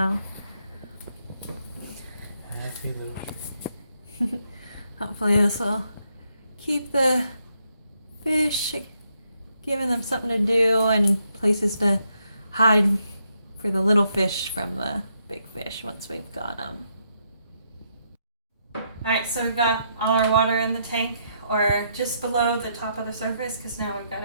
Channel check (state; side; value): inverted; both; correlation -0.77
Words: Happy little tree. Hopefully this will keep the fish, giving them something to do and places to hide for the little fish from the big fish once we've got them. Alright, so we've got all our water in the tank, or just below the top of the surface, because now we've got